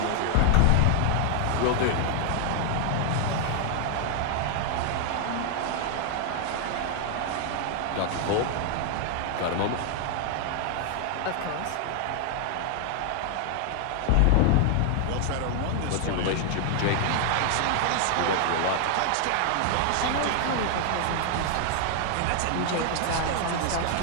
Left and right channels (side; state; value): both; different; correlation 0.00